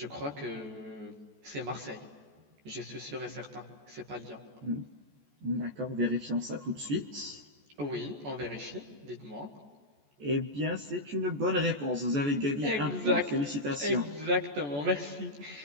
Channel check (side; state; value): left; late; 14 ms